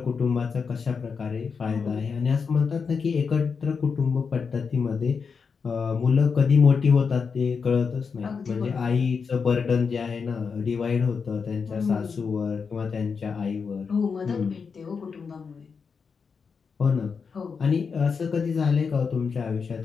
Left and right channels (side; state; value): right; quieter; 5.6 dB